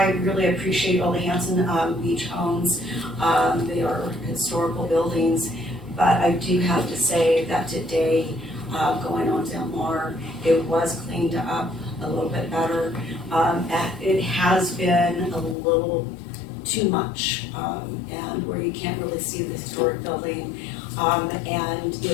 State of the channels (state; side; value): drops out; right; at 15.6 s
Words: really appreciate Ole Hansen Beach Homes. They are historical buildings, but I do have to say that today, going on Del Mar, it was cleaned up a little bit better. It has been a little too much, and where you can't really see the historic building. And